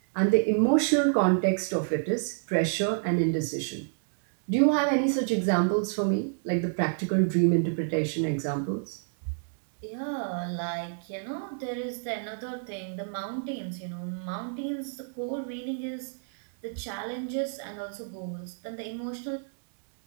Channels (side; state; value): left; silent; digital silence